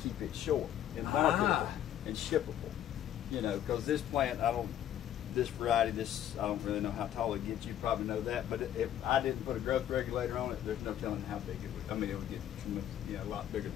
keep it short and marketable and shippable. Because this plant, this variety, I don't really know how tall it gets. You probably know that. But if I didn't put a growth regulator on it, there's no telling how big it would. I mean, it would get a lot bigger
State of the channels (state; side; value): quieter; right; 11.0 dB